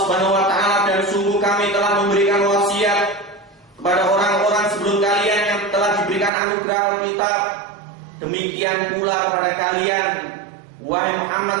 Subhanahu wa taala, dan sungguh kami telah memberikan wasiat kepada orang-orang sebelum kalian yang telah diberikan anugerah Alkitab. Demikian pula kepada kalian, wahai Muhammad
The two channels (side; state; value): left; drops out; at 6.3 s